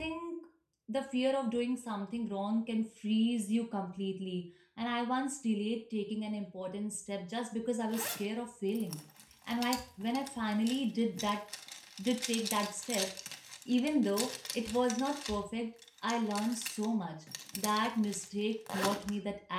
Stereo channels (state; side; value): identical; both; correlation 1.00